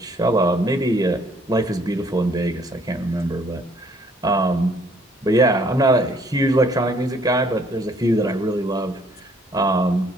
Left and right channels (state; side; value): normal; both; correlation 0.63